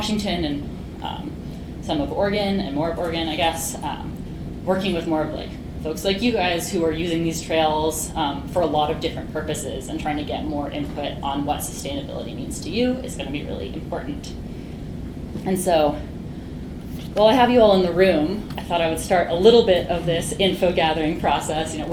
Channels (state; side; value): identical; both; correlation 1.00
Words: and some of Oregon and more of Oregon, I guess, working with more of folks like you guys who are using these trails for a lot of different purposes and trying to get more input on what sustainability means to you is going to be really important. And so, while I have you all in the room, I thought I would start a little bit of this info gathering process.